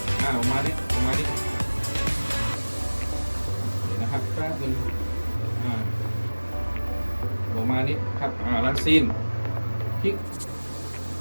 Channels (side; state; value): both; inverted; correlation -1.00